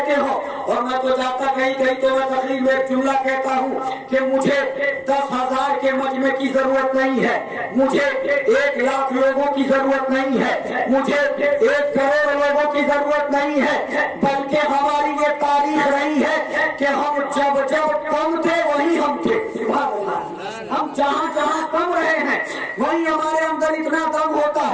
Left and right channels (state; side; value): identical; both; correlation 1.00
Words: हो, और मैं तो जाता कहीं कहीं तो मैं तकरीर में एक जुमला कहता हूँ कि मुझे 10,000 के मजमे की जरूरत नहीं है, मुझे 1 लाख लोगों की जरूरत नहीं है, मुझे 1 करोड़ लोगों की जरूरत नहीं है, बल्कि हमारी ये तारीख रही है कि हम जब जब कम थे वही हम थे। हम जहाँ जहाँ कम रहे हैं वही हमारे अंदर इतना दम होता